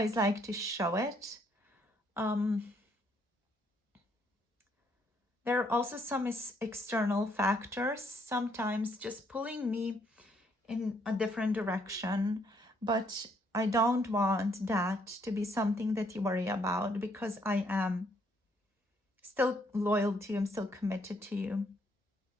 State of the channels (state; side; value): normal; both; correlation 0.70